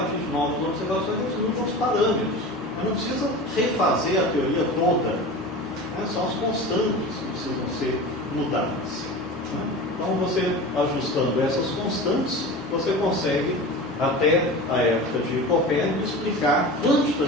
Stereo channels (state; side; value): normal; both; correlation 0.32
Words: de novas observações, eles mudam os parâmetros. Mas não precisa refazer a teoria toda. Né? São as constantes que precisam ser mudadas. Né? Então, você ajustando essas constantes, você consegue até a época de Copérnico, explicar